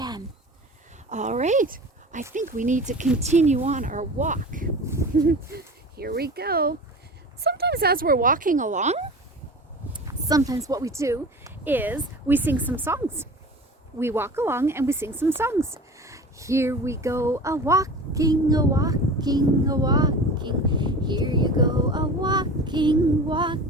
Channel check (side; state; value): both; normal; correlation 0.36